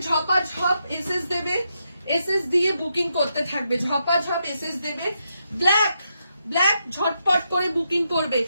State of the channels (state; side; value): inverted; both; correlation -0.82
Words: ঝপাঝপ এসএস দেবে, এসএস দিয়ে বুকিং করতে থাকবে, ঝপাঝপ এসএস দেবে। ব্ল্যাক ঝটপট করে বুকিং করবে।